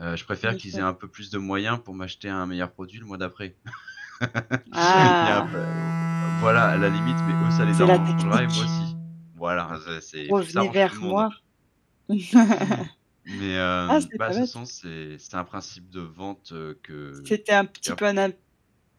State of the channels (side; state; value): both; identical; correlation 1.00